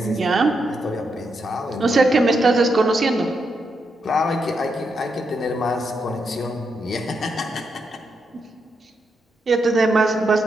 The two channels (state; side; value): normal; both; correlation 0.82